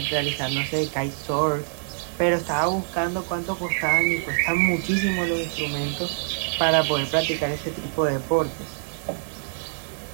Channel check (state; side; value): silent; left; 62 dB below the other